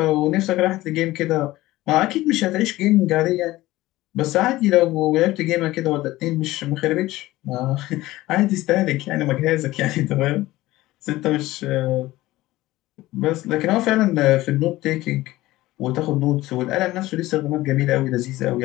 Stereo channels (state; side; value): quieter; right; 17.4 dB